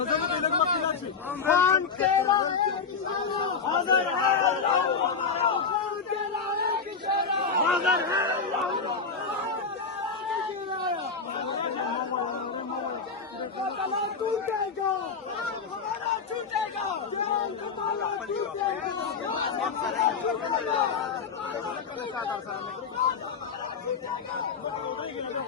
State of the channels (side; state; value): right; quieter; 5.3 dB